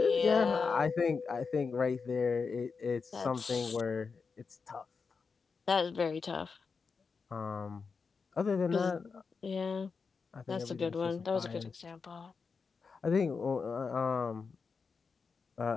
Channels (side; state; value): right; quieter; 5.1 dB